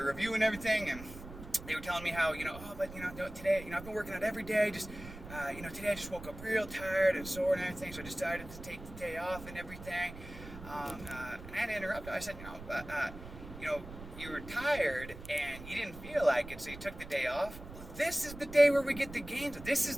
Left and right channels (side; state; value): right; noise; rumble, 13 dB below the sound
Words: review and everything. And they were telling me how, today, I've been working out every day. Just, today I just woke up real tired and sore and everything. So I decided to take the day off and everything. And I had to interrupt. I said, you were tired and you didn't feel like it, so you took the day off. This is the day where we get the gains. This